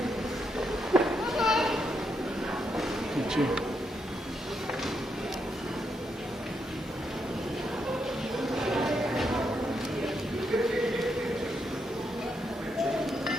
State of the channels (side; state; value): both; normal; correlation 0.80